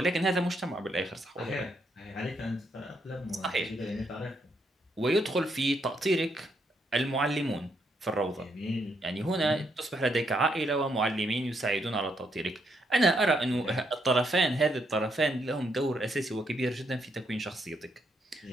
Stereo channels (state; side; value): normal; both; correlation 0.76